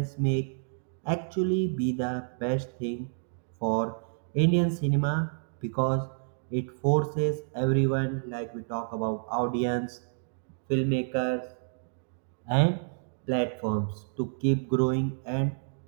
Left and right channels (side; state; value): left; silent; digital silence